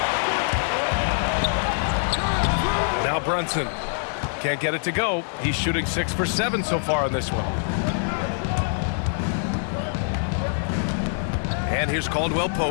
Now Brunson. Can't get it to go. He's shooting 6 for 7 so far on this one. And here's Caldwell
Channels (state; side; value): silent; right; digital silence